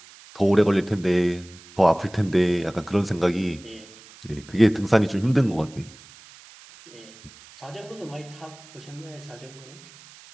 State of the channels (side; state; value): right; noise; hiss, 22 dB below the sound